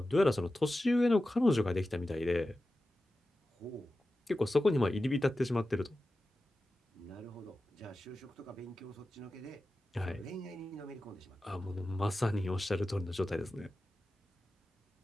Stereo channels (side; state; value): both; normal; correlation 0.94